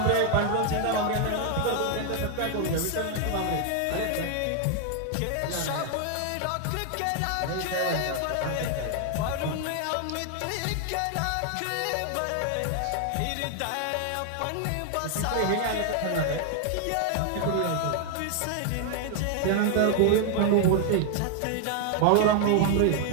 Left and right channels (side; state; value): both; different; correlation 0.00